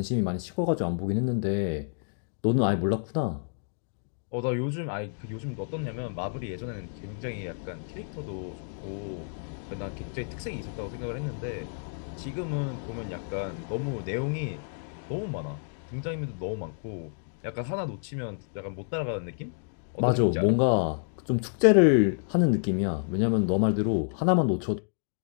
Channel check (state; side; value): silent; right; digital silence